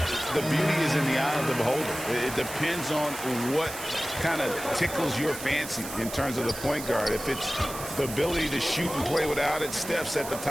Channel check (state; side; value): noise; right; hiss, 10 dB below the sound